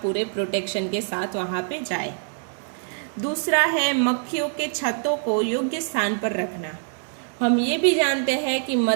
पूरे प्रोटेक्शन के साथ वहाँ पे जाए। दूसरा है मक्खियों के छत्तों को योग्य स्थान पर रखना। हम ये भी जानते हैं कि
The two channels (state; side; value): silent; left; digital silence